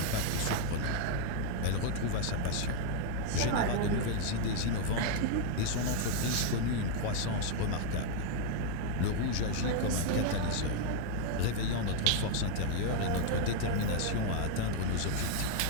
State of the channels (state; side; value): different; both; correlation 0.00